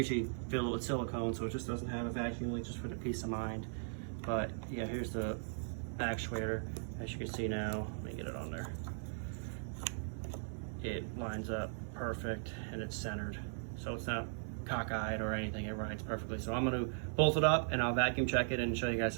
fill it with silicone so it just doesn't have a vacuum leak, just for the peace of mind. But yeah, here's the actuator. As you can see now, let me get it on there. It lines up perfect and it's centered. So it's not cockeyed or anything, it rides perfectly. So I'm gonna bolt it up and I'll vacuum check it and show you guys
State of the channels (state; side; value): silent; left; 52 dB below the other